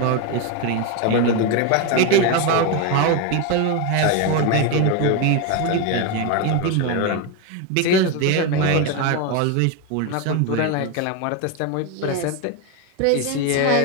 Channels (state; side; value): different; both; correlation 0.02